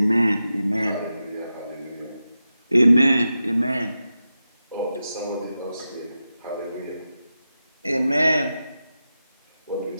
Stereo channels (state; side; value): inverted; both; correlation -0.91